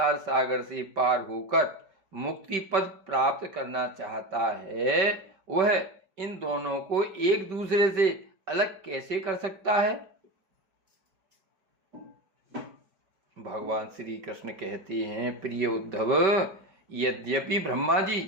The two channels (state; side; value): late; left; 5.2 ms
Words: सागर से पार होकर मुक्ति पद प्राप्त करना चाहता है, वह इन दोनों को एक दूसरे से अलग कैसे कर सकता है? भगवान श्री कृष्ण कहते हैं, प्रिय उद्धव, यद्यपि ब्रह्मा